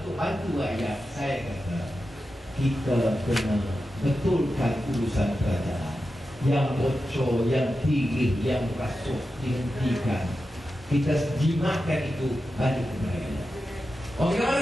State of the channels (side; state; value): both; normal; correlation 0.91